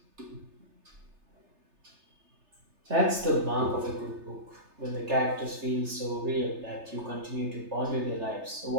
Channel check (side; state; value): left; late; 3.3 ms